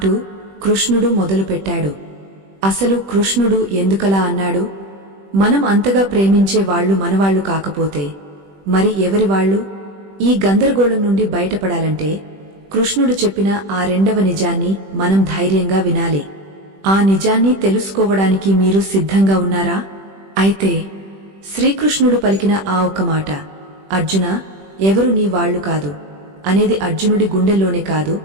కృష్ణుడు మొదలుపెట్టాడు. అసలు కృష్ణుడు ఎందుకలా అన్నాడు? మనం అంతగా ప్రేమించే వాళ్లు మనవాళ్లు కాకపోతే మరి ఎవరివాళ్లు? ఈ గందరగోళం నుండి బయటపడాలంటే కృష్ణుడు చెప్పిన ఆ రెండవ నిజాన్ని మనం ధైర్యంగా వినాలి. ఆ నిజాన్ని తెలుసుకోవడానికి మీరు సిద్ధంగా ఉన్నారా? అయితే శ్రీకృష్ణుడు పలికిన ఆ ఒక్క మాట, అర్జునా, ఎవరు నీ వాళ్లు కాదు అనేది అర్జునుడి గుండెల్లోనే కాదు,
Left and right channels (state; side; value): late; left; 21 ms